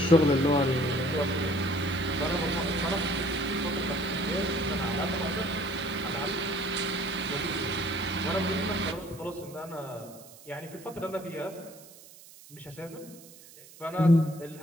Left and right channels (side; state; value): right; noise; hiss, 20 dB below the sound